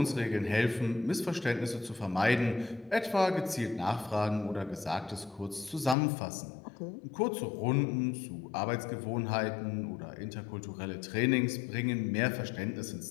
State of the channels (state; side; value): drops out; right; at 6.0 s